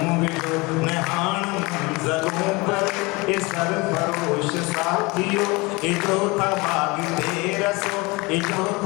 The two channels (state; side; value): quieter; right; 25.1 dB